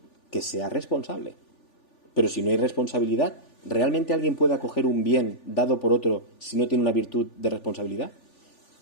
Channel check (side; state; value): right; late; 3.4 ms